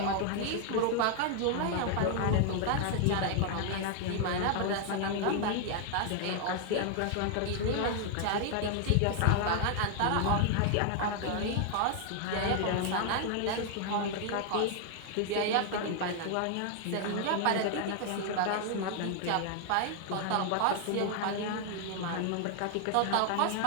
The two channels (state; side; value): different; both; correlation 0.00